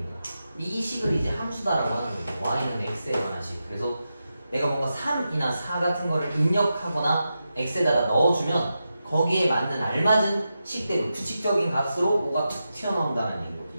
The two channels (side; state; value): both; inverted; correlation -0.89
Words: 이 식을 이제 함수다라고 하는 거죠. y는 x에 관한 식. 그래서 내가 뭔가 3이나 4 같은 거를 입력하거나 x에다가 넣어주면 거기에 맞는 알맞은 식대로 규칙적인 값으로 뭐가 툭 튀어나온다는